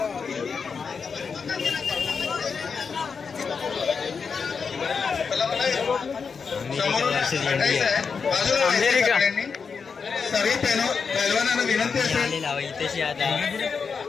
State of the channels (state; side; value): quieter; right; 5.6 dB